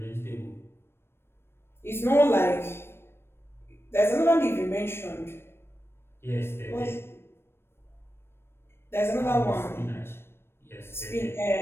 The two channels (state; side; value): late; right; 0.12 ms